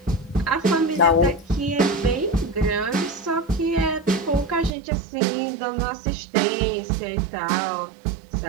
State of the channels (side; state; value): left; drops out; at 4.7 s